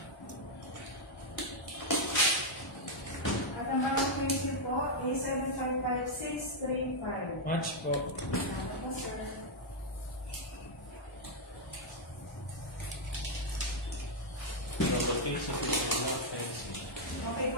At ang bagong prinsip po ay 755635. Match po. Ano po, sir? Okay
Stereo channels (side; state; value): both; normal; correlation -0.02